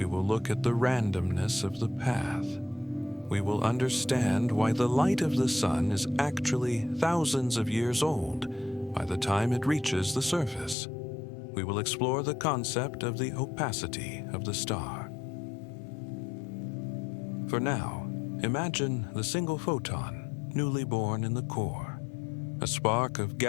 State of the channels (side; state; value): right; drops out; at 10.8 s